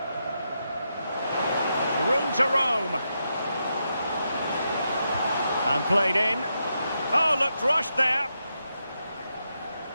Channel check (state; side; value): inverted; both; correlation -0.84